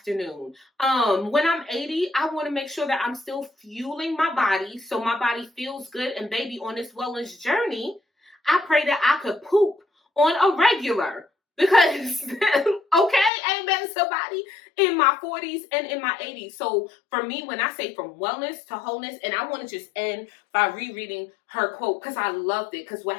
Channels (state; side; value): drops out; right; at 13.3 s